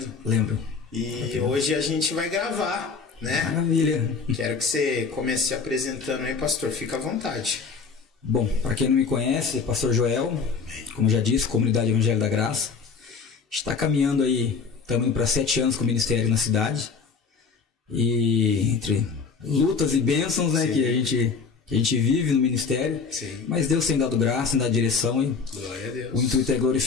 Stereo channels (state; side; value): quieter; right; 5.2 dB